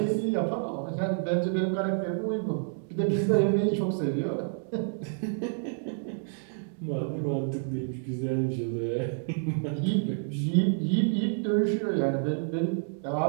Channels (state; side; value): silent; left; digital silence